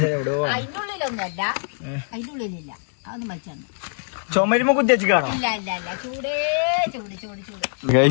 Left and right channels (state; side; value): silent; right; digital silence